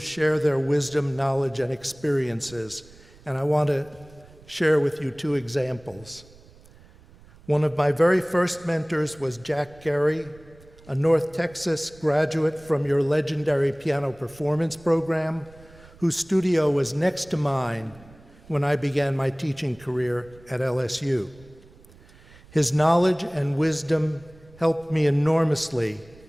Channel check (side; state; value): right; noise; rumble, 24 dB below the sound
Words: their wisdom, knowledge, and experiences. And I want to share with you two examples. One of my very first mentors was Jack Gary, a North Texas graduate from your legendary piano performance program, whose studio was next to mine when I began my teaching career at LSU. His knowledge and wisdom helped me enormously